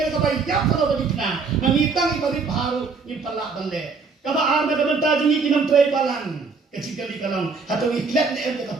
kapai yak kalau bedikna nangitang ibari baru impalak bande kaba ar nak betah jingi kinam tray balang kecil kali kalang atau iklat ne em ka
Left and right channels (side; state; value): left; quieter; 4.7 dB